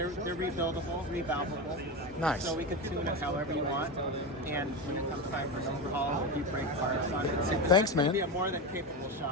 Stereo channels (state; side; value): normal; both; correlation 0.18